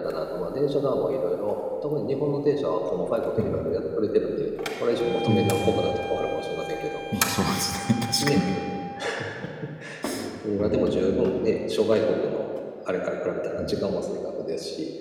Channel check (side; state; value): both; identical; correlation 1.00